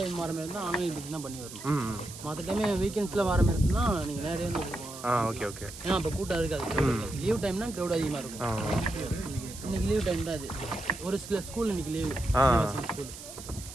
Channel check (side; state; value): right; noise; hiss, 13 dB below the sound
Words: வர மாதிரி இருந்தால் ஆன்லைன் புக்கிங் தான் பண்ணி வரணும். மற்ற டைமே வீக்கெண்ட்ஸில் வர மாதிரி இருக்குன்னா நீங்கள் நேரடியாக வந்து ஓகே ஓகே. ஏன்னா அப்போ கூட்டம் இருக்காது. லீவ் டைம்னா க்ரௌட் அதிகமாக இருக்கும். இன்னைக்கு லீவ் டைம் தான் அது. ஒரு சில ஸ்கூல் இன்னைக்கு லீவு, ஸ்கூல்,